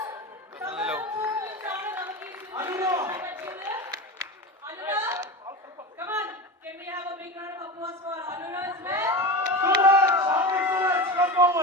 Hello. Anura, come on. Can we have a big round of applause for Anura as well? Suraj, come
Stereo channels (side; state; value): both; normal; correlation 0.25